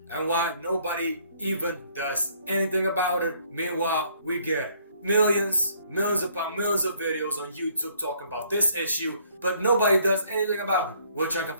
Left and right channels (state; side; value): inverted; both; correlation -0.64